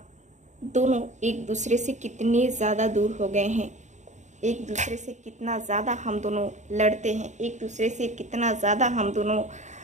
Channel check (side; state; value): left; late; 0.34 ms